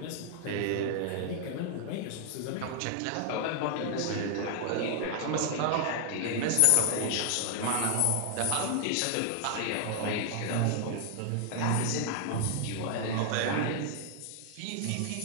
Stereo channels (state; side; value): different; both; correlation 0.00